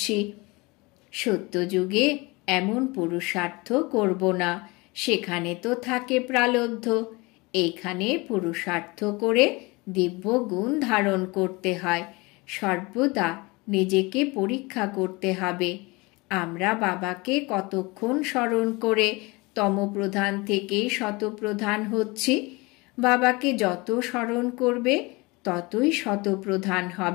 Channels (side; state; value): right; quieter; 24.8 dB